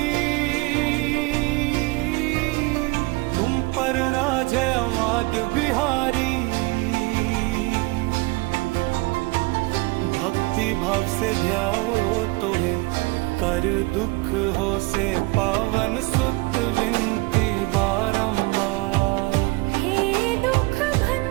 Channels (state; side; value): quieter; left; 24.3 dB